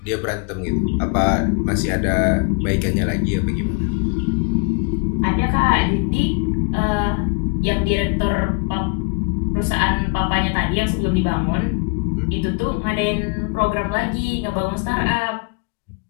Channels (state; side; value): quieter; right; 32.0 dB